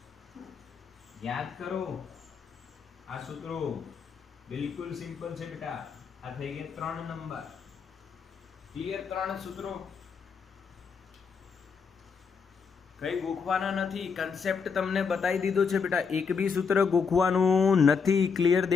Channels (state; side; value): quieter; right; 5.7 dB